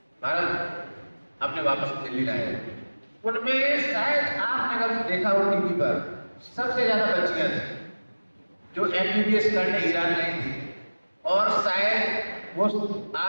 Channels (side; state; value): both; inverted; correlation -1.00